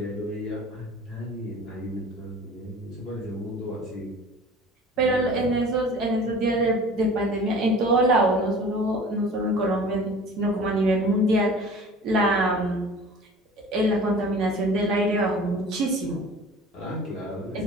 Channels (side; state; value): both; normal; correlation 0.43